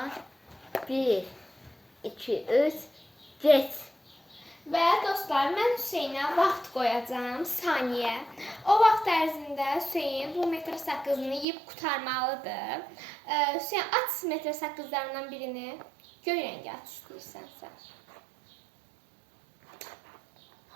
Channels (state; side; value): drops out; left; at 11.5 s